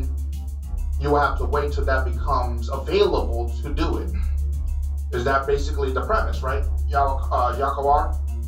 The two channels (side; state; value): both; identical; correlation 1.00